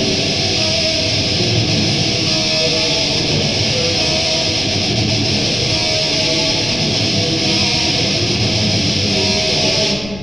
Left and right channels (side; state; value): left; noise; rumble, 15 dB below the sound